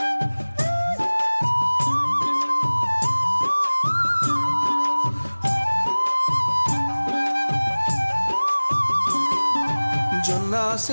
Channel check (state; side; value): inverted; both; correlation -1.00